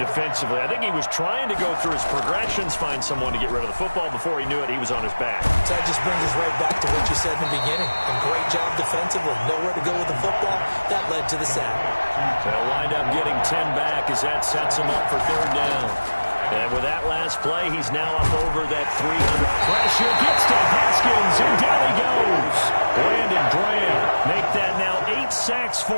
defensively. I think he was trying to go through his progressions, find someone to get rid of the football. Before he knew it, he was on his back. So that just brings us right back to what you said in the beginning. A great job defensively. Nowhere to go with the football. That led to the sack. They'll wind up getting 10 back as that sets them up for 3rd down. And with that last play, he's now up over that 300. Pressure gets to Haskins, and down he goes. Brandon Graham make that now 8 sacks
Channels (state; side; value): inverted; both; correlation -1.00